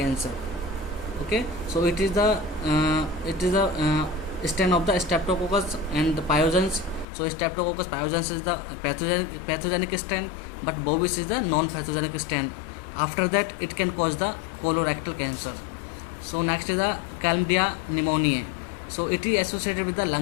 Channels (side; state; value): right; drops out; at 7.1 s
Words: Okay, so it is the strain of the Streptococcus and the pyogenes. So Streptococcus pyogenes is the pathogenic strain, but bovis is the non-pathogenic strain. After that, it can cause the colorectal cancer. So next is the Chlamydia pneumoniae. So it is associated with the